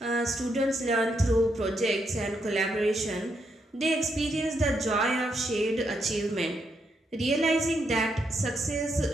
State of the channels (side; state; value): both; normal; correlation 0.79